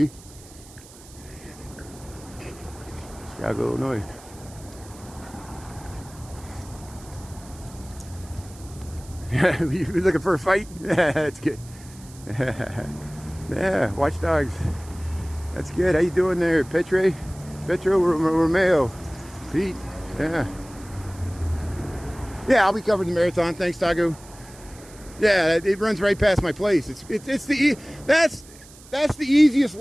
Chicago, Illinois. You looking for a fight? That's good. Yeah, watch dogs. That's good. How you doing there, Petro Romeo? Pete? Yeah. Yeah, I'll be covering the marathon. Thanks, Tago. Yeah, it runs right past my place. That's the easiest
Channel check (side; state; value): right; noise; hiss, 21 dB below the sound